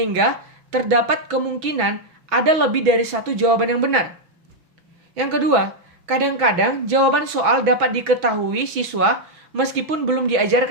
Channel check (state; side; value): late; left; 6.0 ms